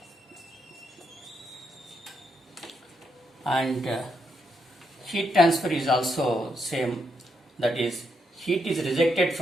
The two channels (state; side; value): normal; both; correlation 0.79